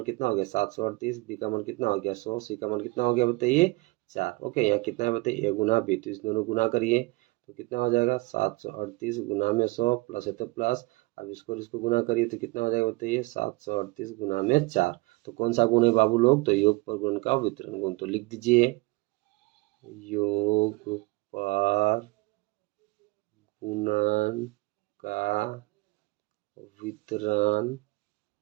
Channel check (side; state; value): left; quieter; 23.8 dB